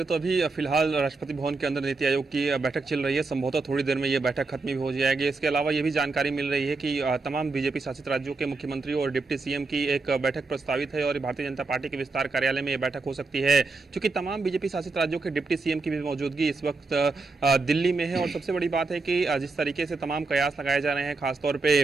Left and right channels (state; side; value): quieter; left; 3.8 dB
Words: तो अभी फिलहाल राष्ट्रपति भवन के अंदर नीति आयोग की बैठक चल रही है। संभवतः थोड़ी देर में ये बैठक खत्म भी हो जाएगी। इसके अलावा ये भी जानकारी मिल रही है कि तमाम बीजेपी शासित राज्यों के मुख्यमंत्री और डिप्टी सीएम की एक बैठक प्रस्तावित है और भारतीय जनता पार्टी के विस्तार कार्यालय में ये बैठक हो सकती है, क्योंकि तमाम बीजेपी शासित राज्यों के डिप्टी सीएम की भी मौजूदगी इस वक्त दिल्ली में है। और सबसे बड़ी बात है कि जिस तरीके से तमाम कयास लगाए जा रहे हैं, खासतौर